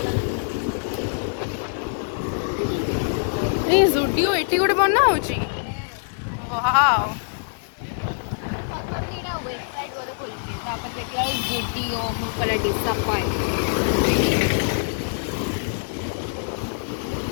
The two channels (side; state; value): right; silent; digital silence